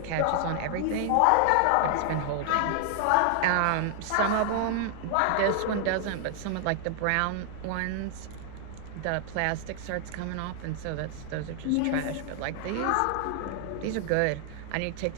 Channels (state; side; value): different; both; correlation 0.00